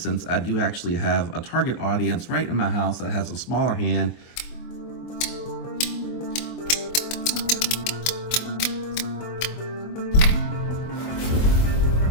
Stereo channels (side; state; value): right; late; 24 ms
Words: I do actually have a target audience right in my house that has a smaller hand.